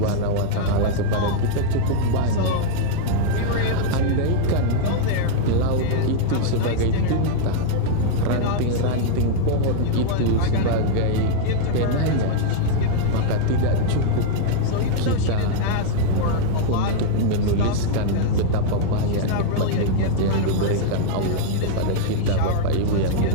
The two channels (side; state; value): both; different; correlation -0.01